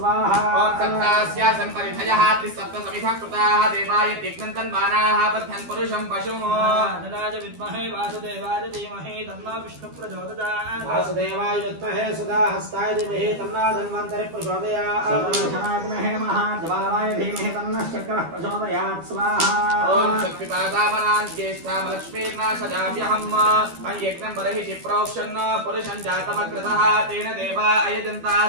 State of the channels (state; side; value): late; left; 12 ms